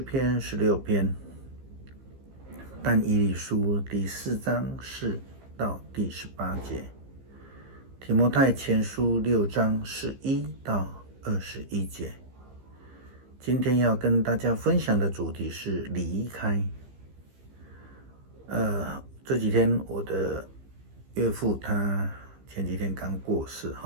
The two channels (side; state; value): left; late; 15 ms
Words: 篇16篇，但以理书第4章4到第18节，提摩太前书6章11到21节。今天要跟大家分享的主题是离开。这几天我的岳父他前几天刚过世